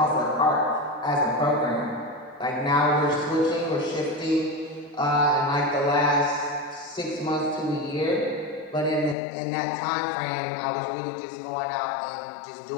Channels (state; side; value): drops out; right; at 9.2 s